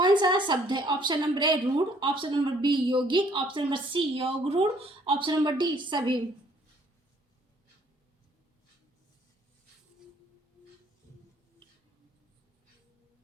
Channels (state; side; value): normal; both; correlation 0.62